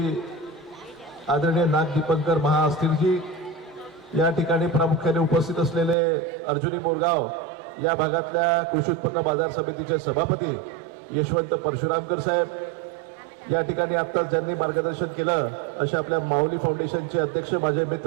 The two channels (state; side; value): drops out; left; at 6.0 s